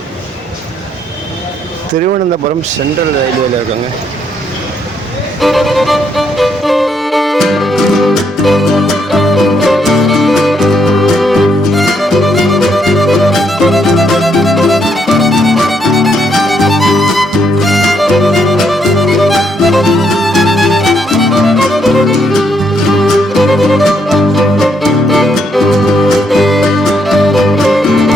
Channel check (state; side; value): normal; both; correlation 0.73